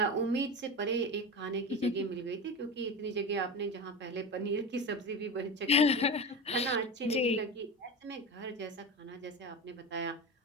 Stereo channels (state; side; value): normal; both; correlation 0.25